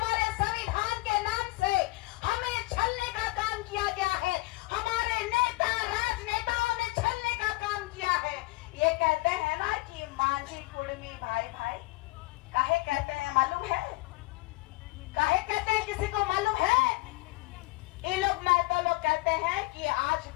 संविधान के नाम से हमें छलने का काम किया गया है, हमारे नेता राजनेताओं ने छलने का काम किया है। ये कहते हैं ना कि मांझी कुर्मी भाई भाई, काहे कहते हैं मालूम है? काहे कहते हैं, किसी को मालूम है? ये लोग महतो लोग कहते हैं कि आज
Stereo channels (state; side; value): quieter; right; 22.2 dB